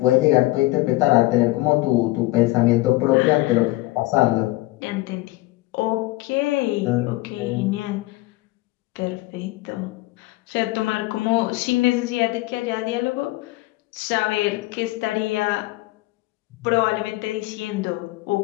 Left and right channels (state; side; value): quieter; right; 19.7 dB